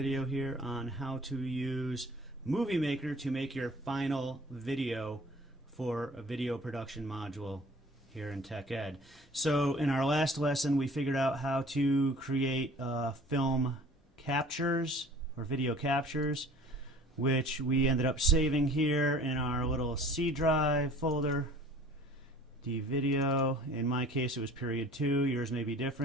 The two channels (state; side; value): normal; both; correlation 0.48